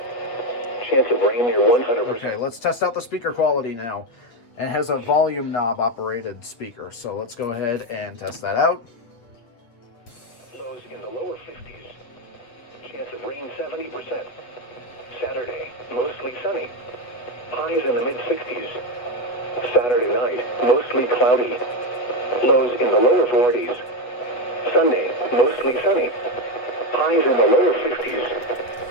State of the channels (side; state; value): right; late; 8.5 ms